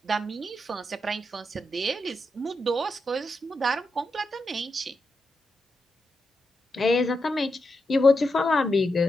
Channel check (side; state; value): both; normal; correlation 0.86